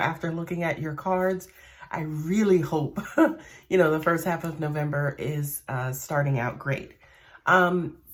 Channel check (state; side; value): identical; both; correlation 1.00